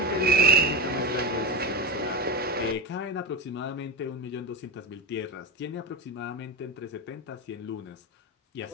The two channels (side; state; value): both; normal; correlation 0.20